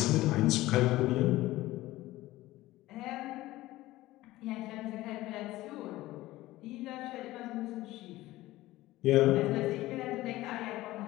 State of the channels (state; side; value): quieter; right; 17.2 dB